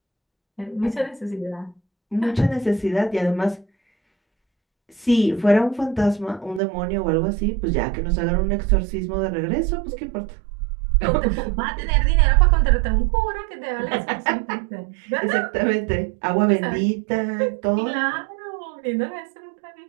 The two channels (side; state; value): left; drops out; at 6.6 s